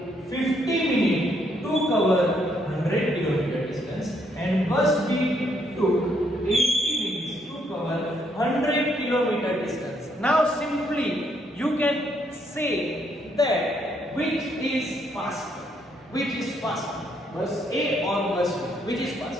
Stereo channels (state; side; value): normal; both; correlation 0.72